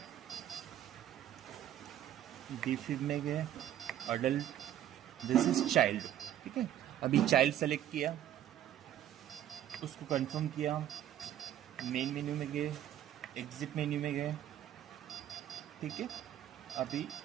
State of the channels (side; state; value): left; quieter; 11.5 dB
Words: डिफिब में गए, अडल्ट, दिस इज चाइल्ड। ठीक है, अभी चाइल्ड सेलेक्ट किया, उसको कंफर्म किया, मेन मेन्यू में गए, एग्जिट मेन्यू में गए। ठीक है, अभी